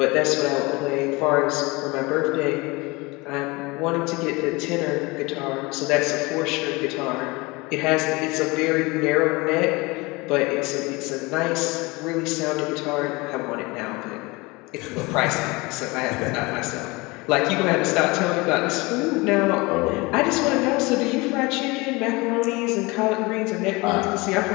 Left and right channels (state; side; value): quieter; right; 24.3 dB